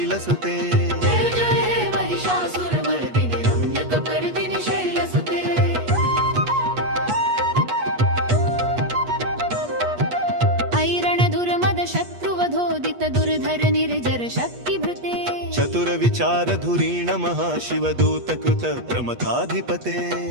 जय जय हे महिषासुर मर्दिनि रम्यक पर्दिनि शैलसुते ऐरण दुर्मद शत्रुवधोदित दुर्धर निर्जर शक्तिभृते चतुर विचार धुरीण महाशिव दूत कृत प्रमथाधिपते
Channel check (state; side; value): late; left; 8.3 ms